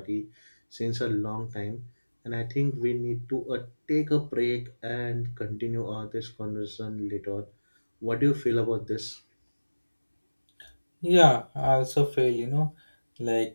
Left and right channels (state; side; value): inverted; both; correlation -1.00